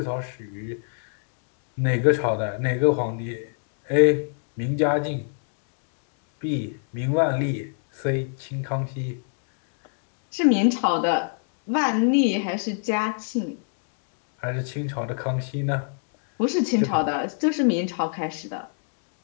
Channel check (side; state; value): right; silent; 60 dB below the other